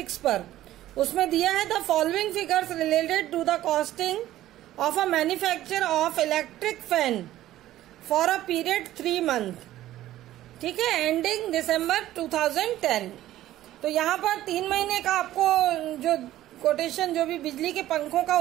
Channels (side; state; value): left; quieter; 14.1 dB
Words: पर, उसमें दिया है the following figures related to the costing of a manufacture of electric fan for a period 3 month, ठीक है, एंडिंग दिसंबर 2010। तो यहाँ पर 3 महीने का आपको जो कोटेशन, जो भी बिजली के पंखों का